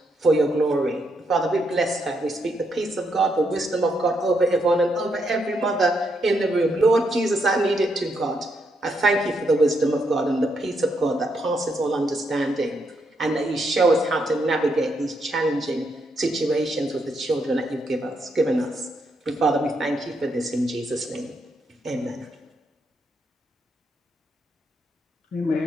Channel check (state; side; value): normal; both; correlation 0.78